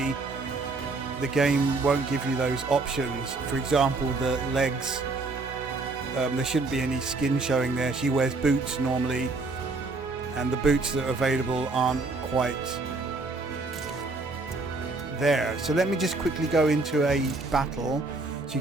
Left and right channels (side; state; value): left; quieter; 3.6 dB